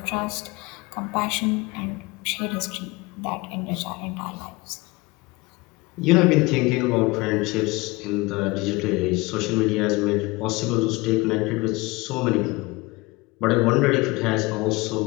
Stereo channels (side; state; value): right; quieter; 23.1 dB